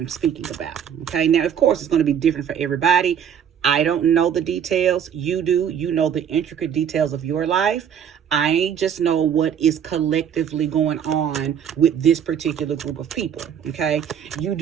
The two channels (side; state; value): left; quieter; 8.5 dB